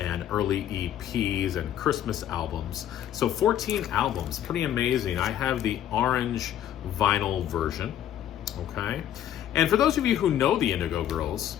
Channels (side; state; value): right; quieter; 10.9 dB